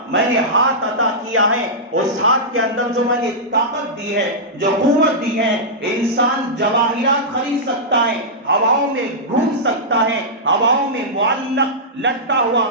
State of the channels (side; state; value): both; normal; correlation -0.12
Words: میں نے ہاتھ عطا کیا ہے، اس ہاتھ کے اندر جو میں نے طاقت دی ہے، جو قوت دی ہے، انسان جواہرات خرید سکتا ہے، ہواؤں میں گھوم سکتا ہے، ہواؤں میں معلق لٹکا ہوا